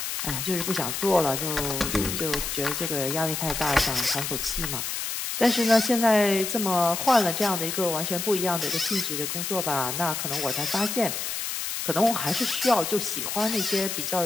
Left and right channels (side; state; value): left; noise; hiss, 3 dB below the sound